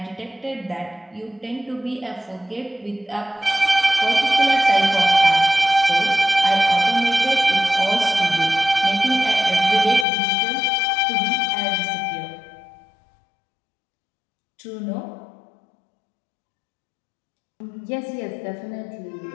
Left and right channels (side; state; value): right; drops out; at 10.1 s